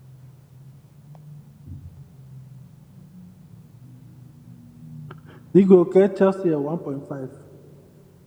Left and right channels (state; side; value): identical; both; correlation 1.00